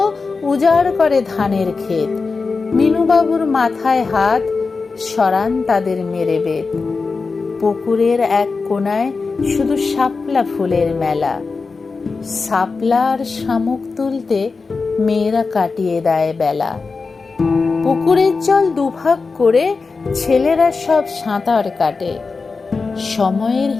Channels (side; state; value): right; quieter; 4.4 dB